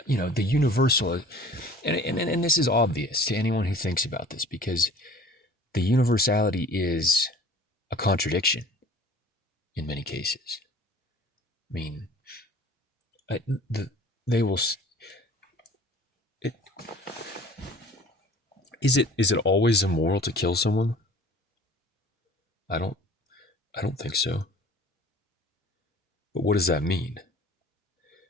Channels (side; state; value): both; normal; correlation 0.48